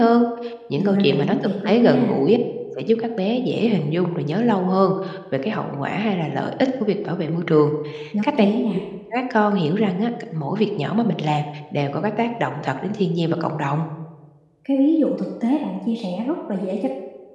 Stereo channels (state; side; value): identical; both; correlation 1.00